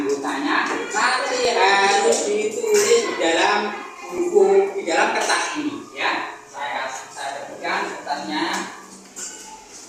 Nanti harus ditulis di dalam buku, di dalam kertas ini ya. Saya berikan kertasnya.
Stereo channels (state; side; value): identical; both; correlation 1.00